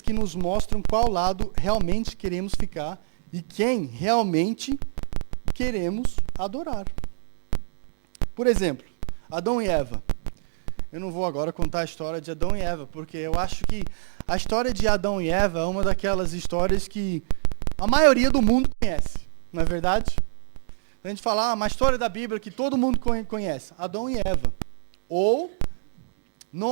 que nos mostram qual lado realmente queremos ficar e quem realmente queremos adorar. Por exemplo, Adão e Eva. Eu não vou agora contar a história de Adão e Eva, porque eu acho que a história de Adão e Eva é uma daquelas histórias que a maioria do mundo conhece, não é verdade? A gente fala, uma história da Bíblia que todo mundo conhece, Adão e Eva. Ou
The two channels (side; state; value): left; silent; digital silence